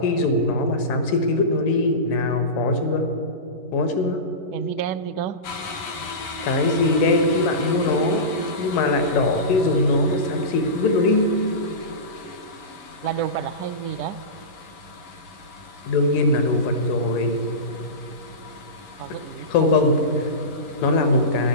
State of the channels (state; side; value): late; right; 11 ms